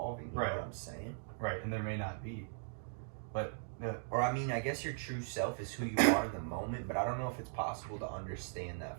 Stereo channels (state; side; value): silent; left; digital silence